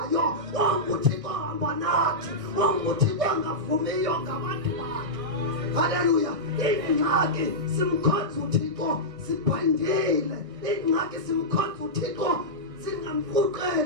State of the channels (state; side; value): late; left; 1.6 ms